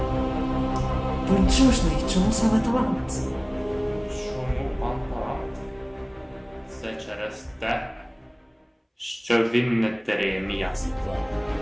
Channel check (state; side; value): identical; both; correlation 1.00